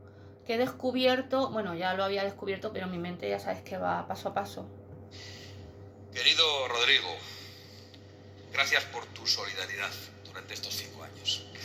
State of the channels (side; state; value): both; identical; correlation 1.00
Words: que he descubierto, bueno, ya lo había descubierto, pero mi mente ya sabes que va paso a paso. Querido Rodrigo, gracias por tu solidaridad durante estos 5 años.